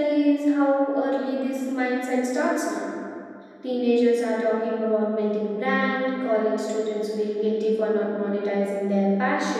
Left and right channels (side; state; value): both; identical; correlation 1.00